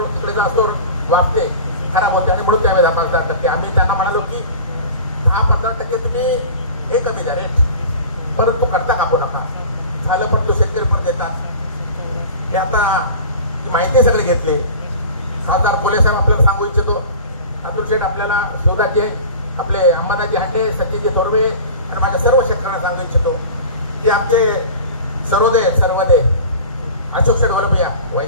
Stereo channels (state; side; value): inverted; both; correlation -0.37